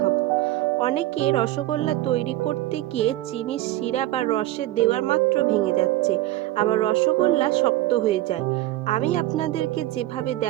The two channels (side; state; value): left; quieter; 15.8 dB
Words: অনেকে রসগোল্লা তৈরি করতে গিয়ে চিনির শিরা বা রসে দেওয়ার মাত্র ভেঙে যাচ্ছে, আবার রসগোল্লা শক্ত হয়ে যায়। আমি আপনাদেরকে যেভাবে